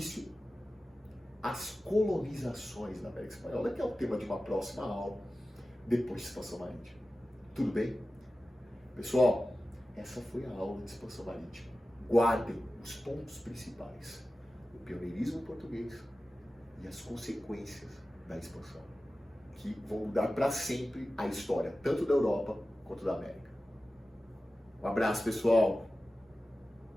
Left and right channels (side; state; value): both; normal; correlation 0.95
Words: às colonizações da América Espanhola, que é o tema de uma próxima aula, depois de expansão marítima. Tudo bem? Pessoal, essa foi a aula de expansão marítima. Guardem os pontos principais: o pioneirismo português e as consequências da expansão, que vão mudar para sempre a história, tanto da Europa quanto da América. Um abraço, pessoal!